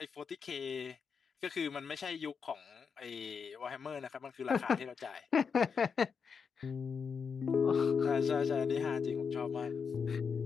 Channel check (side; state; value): right; quieter; 6.0 dB